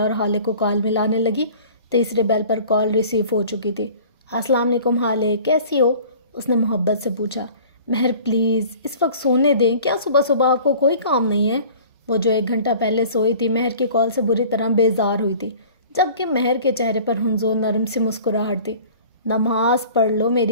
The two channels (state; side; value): inverted; both; correlation -0.46